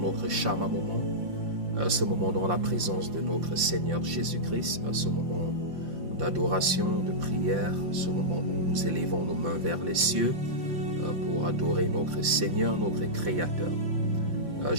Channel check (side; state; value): left; late; 5.7 ms